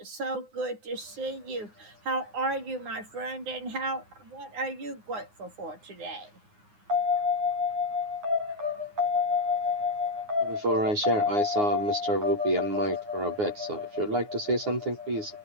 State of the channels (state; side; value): late; left; 9.6 ms